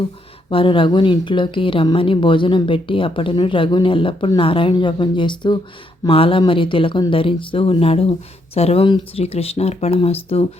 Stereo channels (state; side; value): normal; both; correlation 0.76